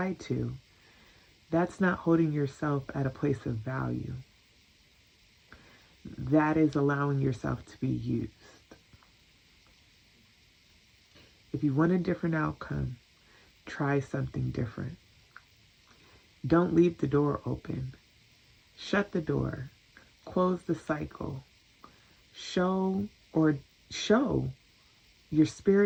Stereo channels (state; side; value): identical; both; correlation 1.00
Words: to, that's not holding yourself at a place of value. That is allowing yourself to be used. If you want a different outcome, try something different. Don't leave the door open. Shut the door. Close the cycle. Show your